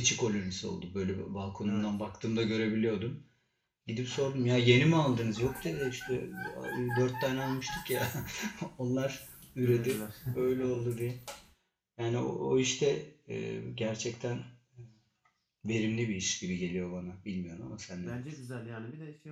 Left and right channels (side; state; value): both; identical; correlation 1.00